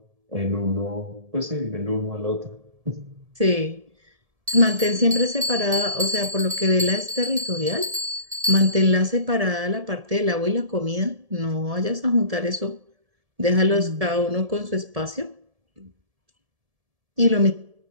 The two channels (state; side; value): late; left; 1.7 ms